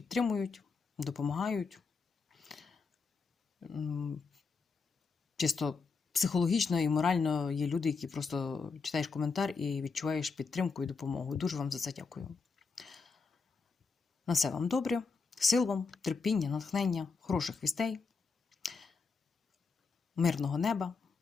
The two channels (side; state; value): right; quieter; 4.8 dB